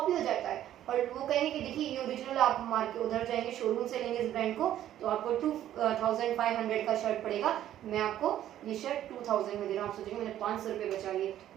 हो जाता है और वो कहेंगे कि देखिए ये ओरिजिनल, आप मार्केट उधर जाएंगे शोरूम से लेंगे इस ब्रांड को तो आपको 2500 का शर्ट पड़ेगा, मैं आपको ये शर्ट 2000 में दे रहा हूँ। आप सोचेंगे मैंने 500 रुपये बचा लिए,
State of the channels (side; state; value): left; quieter; 12.0 dB